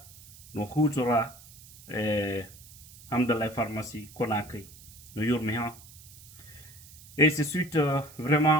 no hutora Hamdallah pharmacie Conakry no yurmi ha. Et c'est suite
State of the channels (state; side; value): noise; right; hiss, 20 dB below the sound